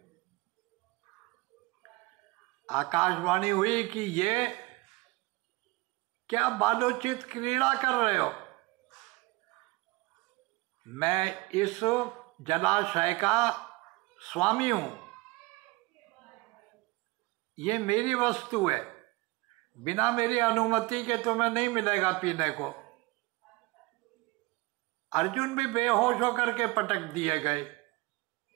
आकाशवाणी हुई कि ये क्या बालोचित क्रीड़ा कर रहे हो। मैं इस जलाशय का स्वामी हूं, ये मेरी वस्तु है। बिना मेरी अनुमति के तुम्हें नहीं मिलेगा पीने को। अर्जुन भी बेहोश होकर के पटक दिए गए।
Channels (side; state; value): left; quieter; 23.6 dB